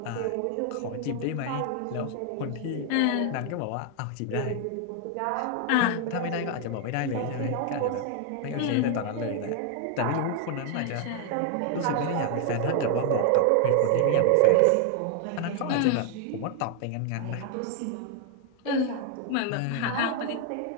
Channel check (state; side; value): different; both; correlation 0.00